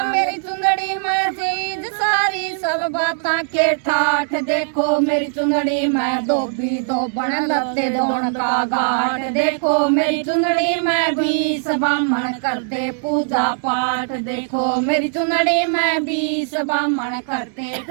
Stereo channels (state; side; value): silent; left; digital silence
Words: मेरी चुंदड़ी में चीज सारी सब बातां के ठाठ, देखो मेरी चुंदड़ी में धोबी धोबन लत्ते धोन का घाट, देखो मेरी चुंदड़ी में 20 ब्राह्मण करते पूजा पाठ, देखो मेरी चुंदड़ी में 20 ब्राह्मण करते